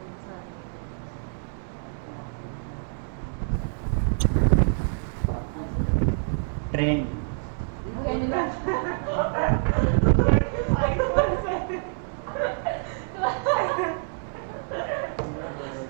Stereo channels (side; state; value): left; silent; digital silence